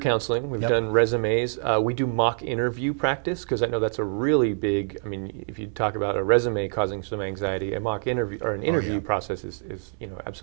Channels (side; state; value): left; silent; 55 dB below the other